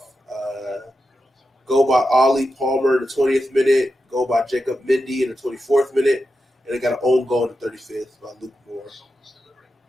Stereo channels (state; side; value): normal; both; correlation 0.89